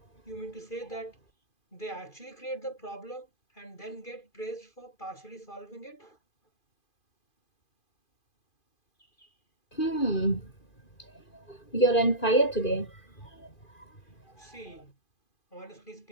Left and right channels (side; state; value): right; late; 2.5 ms